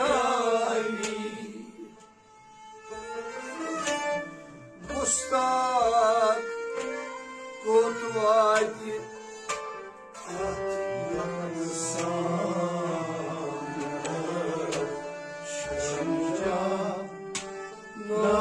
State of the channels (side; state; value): both; identical; correlation 1.00